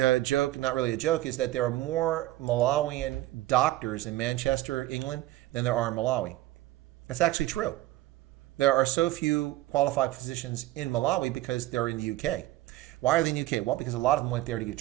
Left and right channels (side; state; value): left; quieter; 16.4 dB